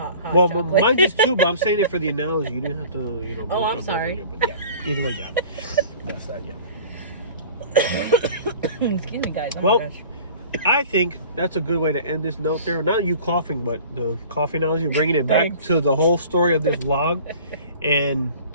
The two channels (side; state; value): both; inverted; correlation -0.44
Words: well, chocolate. Mine is too, but I'm saying it for the analogy. You didn't have to, you know. Oh, I'm sorry. It, but yeah, either way, yeah. That's that, yeah. Excuse me, guys. Oh well, my gosh. I think that's a good way to end this note there. Not you coughing, but the coffee analogy, bringing it back to the whole story of this vlog. And